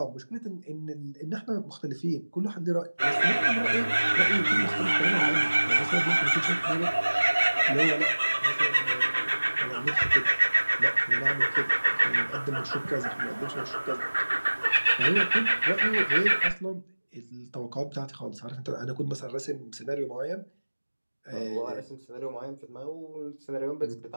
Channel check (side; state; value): both; inverted; correlation -1.00